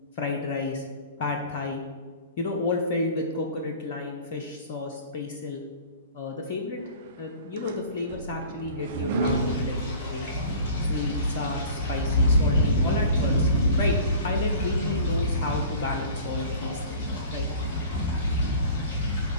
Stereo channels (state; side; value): inverted; both; correlation -0.43